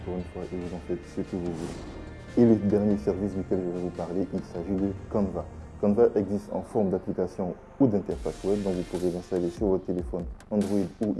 une fois et vous en faites ce que vous voulez. Et le dernier service duquel je vais vous parler, il s'agit de Canva. Canva existe en forme d'application ou d'interface web, donc vous pouvez l'installer sur votre téléphone Android ou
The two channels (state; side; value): identical; both; correlation 1.00